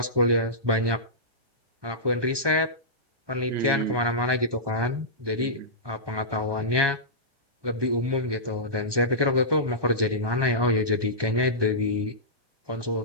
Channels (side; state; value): left; late; 1.2 ms